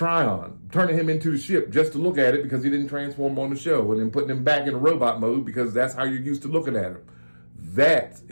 turning him into the ship just to look at it because he didn't transform on the show, and then putting him back in robot mode because that's how you're used to looking at him. That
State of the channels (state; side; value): inverted; both; correlation -1.00